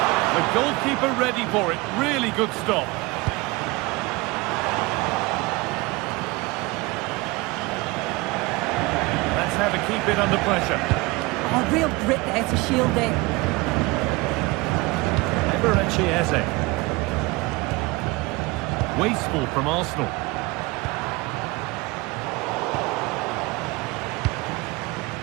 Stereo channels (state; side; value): quieter; left; 23.2 dB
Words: The goalkeeper ready for it. Really good stop. How to keep it under pressure. Oh, real grit there to shield it. Eberechi Eze. Wasteful from Arsenal.